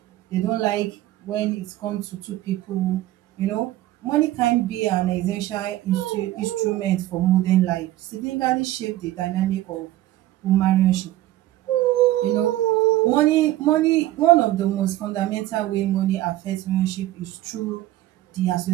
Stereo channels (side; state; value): left; quieter; 15.3 dB